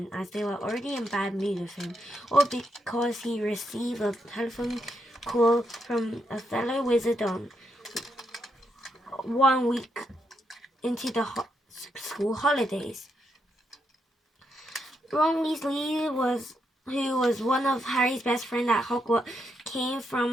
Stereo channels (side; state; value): both; normal; correlation 0.80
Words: as they were already in bad mood with him, or because he received a telephone call from a fellow wizard on 1 week into the school holidays. Ron Weasley, who was one of Harry's best friends at Hogwarts, came